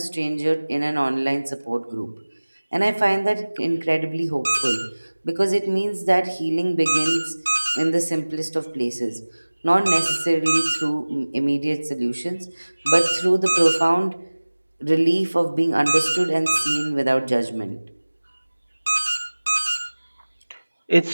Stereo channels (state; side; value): inverted; both; correlation -1.00